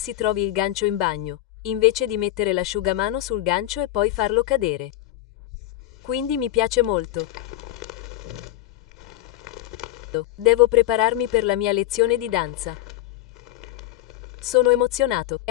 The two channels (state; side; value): quieter; right; 15.0 dB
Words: trovi il gancio in bagno, invece di mettere l'asciugamano sul gancio e poi farlo cadere. Quindi mi piace molto. Devo prepararmi per la mia lezione di danza. Sono emozionato,